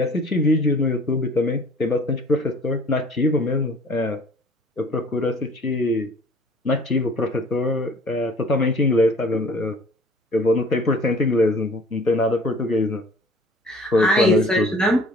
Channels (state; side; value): normal; both; correlation 0.51